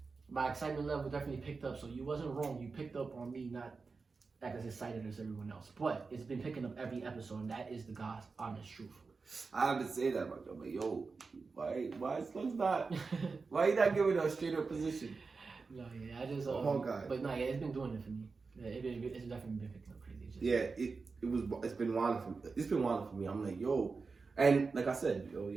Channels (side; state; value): left; quieter; 4.5 dB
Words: my excitement level definitely picked up. So you wasn't wrong. You picked up on me not as excited as everyone else, but it's been picking up every episode, and that is the God's honest truth. I have to say that about you, but yo, why Slug's not? Why you not giving a straight up position? No, yeah, I just Hawkeye. But no, yeah, it's been doing it for me. Yeah, it's definitely been picking up crazy. It's been wild for me. It's been wild for me. I'm like, yo, and like I said, yo,